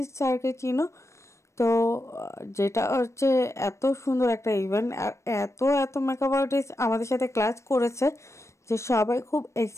স্যারকে চিনো। তো যেটা হচ্ছে এত সুন্দর একটা ইভেন্ট, আর এত এত মেকআপ আর্টিস্ট আমাদের সাথে ক্লাস করেছে যে সবাই খুব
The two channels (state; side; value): late; right; 0.14 ms